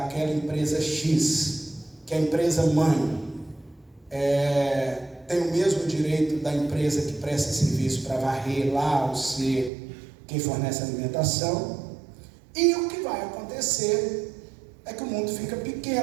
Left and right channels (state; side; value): drops out; left; at 9.7 s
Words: empresa X, que é a empresa mãe, tem o mesmo direito da empresa que presta serviço para varrer lá, ou ser quem fornece alimentação. E o que vai acontecer é que o mundo fica